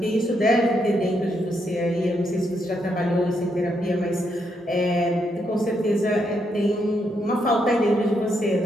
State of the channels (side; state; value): both; normal; correlation 0.78